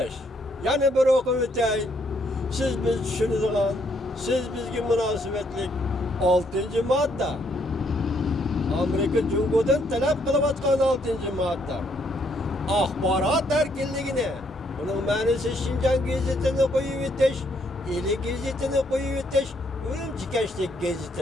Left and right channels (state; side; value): normal; both; correlation 0.71